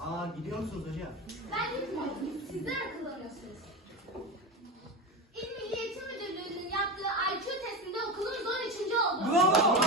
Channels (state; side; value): normal; both; correlation 0.21